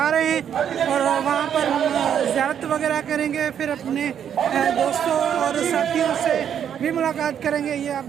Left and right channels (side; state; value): left; quieter; 8.9 dB